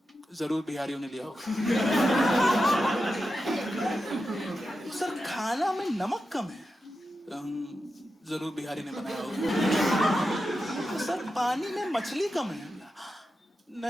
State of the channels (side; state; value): both; normal; correlation 0.90